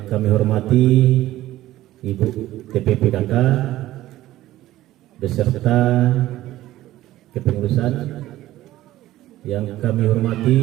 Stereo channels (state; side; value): quieter; left; 15.2 dB